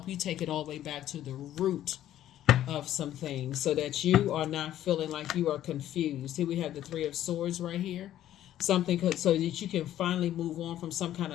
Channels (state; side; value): quieter; right; 12.3 dB